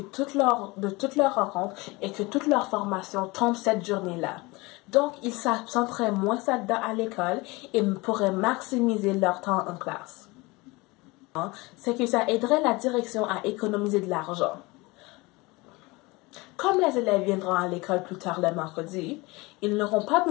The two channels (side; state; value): right; quieter; 23.7 dB